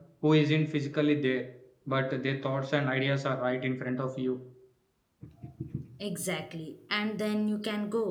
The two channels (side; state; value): both; identical; correlation 1.00